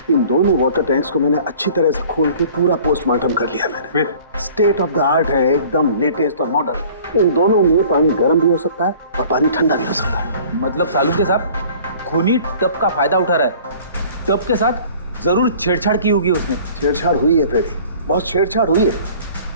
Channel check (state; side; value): inverted; both; correlation -0.49